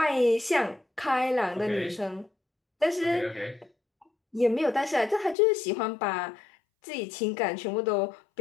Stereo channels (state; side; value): drops out; right; at 5.4 s